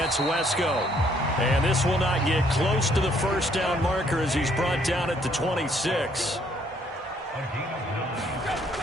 Wesco. And this will not get close to the 1st down marker as he's brought down at the 26.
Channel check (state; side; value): normal; both; correlation 0.66